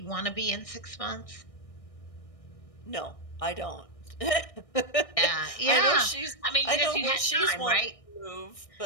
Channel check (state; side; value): late; right; 1.6 ms